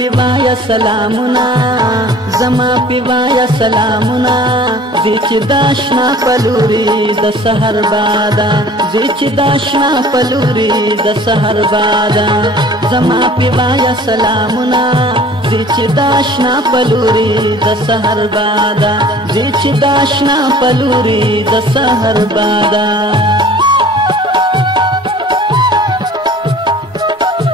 سلامنا زما پیوایا سلامنا زیچ داشنا پلوری د سحر بادا زیچ داشنا پلوری د سحر بادا زما پیوایا سلامنا زیچ داشنا پلوری د سحر بادا زیچ داشنا پلوری د سحر بادا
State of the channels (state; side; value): normal; both; correlation 0.48